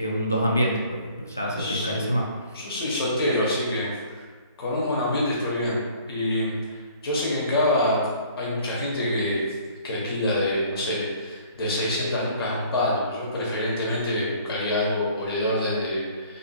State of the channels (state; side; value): inverted; both; correlation -0.54